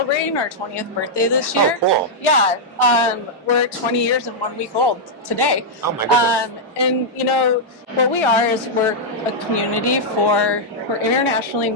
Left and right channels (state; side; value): normal; both; correlation -0.06